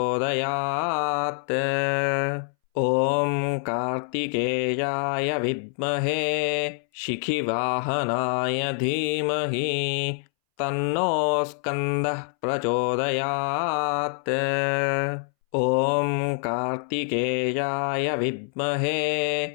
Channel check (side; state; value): right; silent; 61 dB below the other